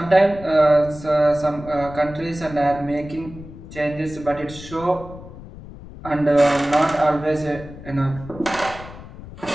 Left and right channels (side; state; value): left; noise; rumble, 15 dB below the sound